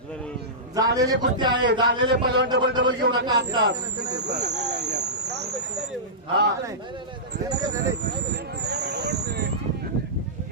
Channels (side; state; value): both; normal; correlation -0.17